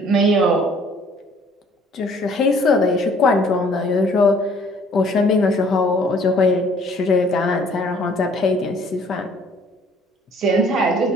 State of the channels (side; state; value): both; normal; correlation 0.57